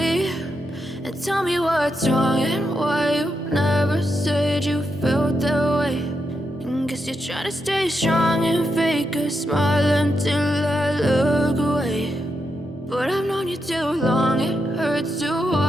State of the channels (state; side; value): normal; both; correlation 0.84